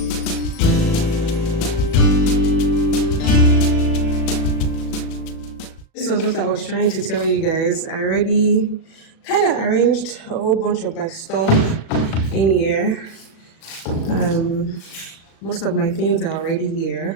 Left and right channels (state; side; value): late; right; 37 ms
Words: This was what I was trying to tell you guys. I already kind of arranged a whole bunch of my stuff in here. Most of my things are already